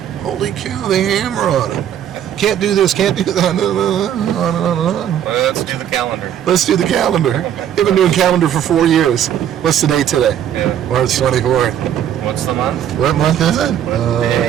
Holy cow, they hammer on him. Can't do this, can't do that, on and on and on. Well, let's do the calendar. Let's do the calendar. They've been doing calendar for 4 years. What's the date today? Yeah. March 24th. What's the month? What month is it?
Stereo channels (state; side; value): quieter; left; 10.1 dB